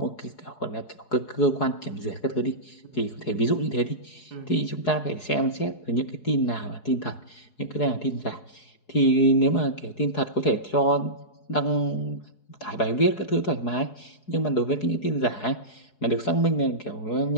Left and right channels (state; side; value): late; right; 4.7 ms